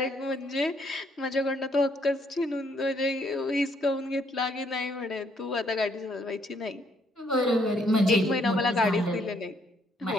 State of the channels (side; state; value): both; normal; correlation 0.69